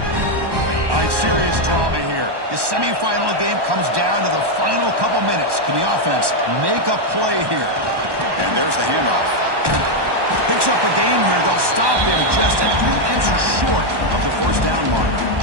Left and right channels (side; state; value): left; late; 1.1 ms